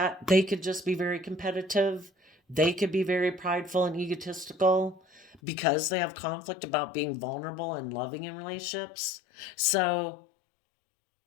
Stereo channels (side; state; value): right; drops out; at 5.4 s